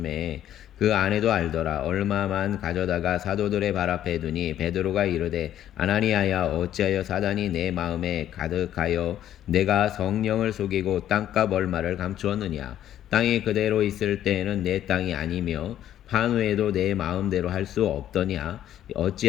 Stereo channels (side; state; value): right; quieter; 11.4 dB